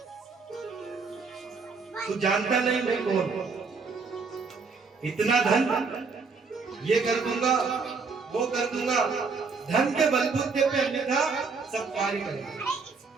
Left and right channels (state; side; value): quieter; left; 4.7 dB